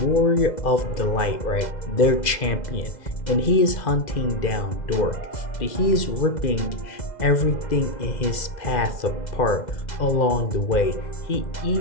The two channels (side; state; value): right; late; 2.0 ms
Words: of the Light, right? Their champion. And he is hunting down Dork, but he is ripping everything in his path apart along the way. He